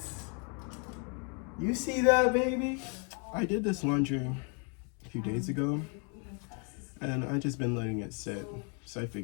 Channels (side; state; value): right; quieter; 37.0 dB